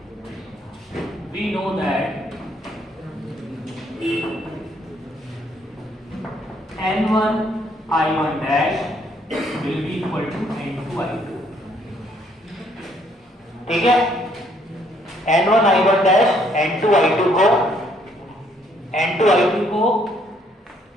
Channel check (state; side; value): normal; both; correlation 0.67